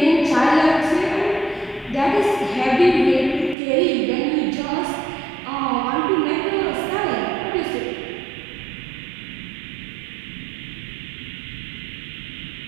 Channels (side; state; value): left; drops out; at 3.6 s